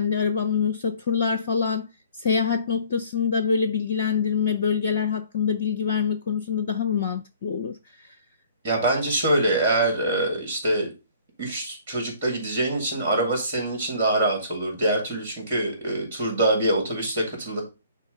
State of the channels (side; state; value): both; inverted; correlation -0.54